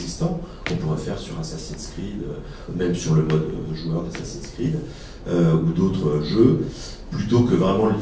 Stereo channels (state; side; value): identical; both; correlation 1.00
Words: qu'on pourrait faire sur Assassin's Creed, même sur le mode joueur d'Assassin's Creed, ou d'autres jeux, plutôt que vraiment